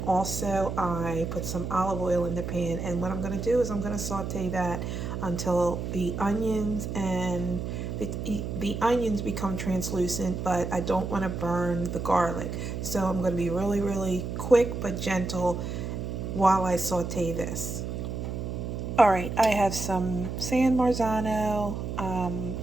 also I put some olive oil in the pan. And what I'm going to do is I'm going to saute that until the onions and the onions become translucent, but I don't want to burn the garlic. So I'm going to be really, really quick but gentle while I saute this. All right, I have some San Marzano,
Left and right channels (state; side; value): noise; right; hum, 4 dB below the sound